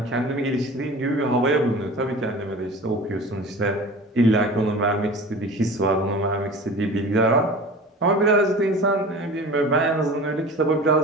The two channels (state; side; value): normal; both; correlation 0.38